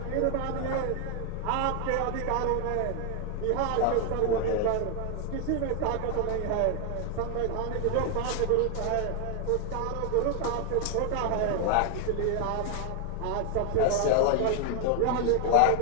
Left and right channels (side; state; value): both; different; correlation 0.01